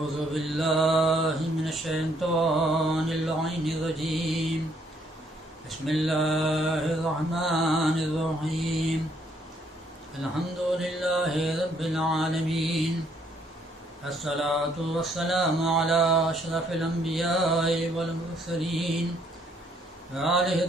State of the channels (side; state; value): both; normal; correlation 0.68